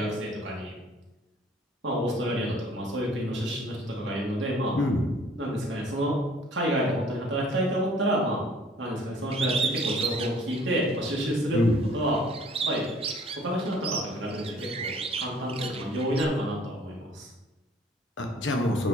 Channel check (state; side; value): normal; both; correlation 0.55